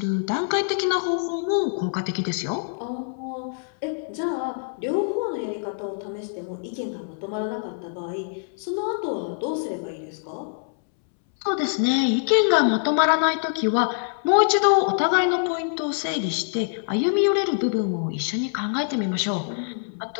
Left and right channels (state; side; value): silent; right; 62 dB below the other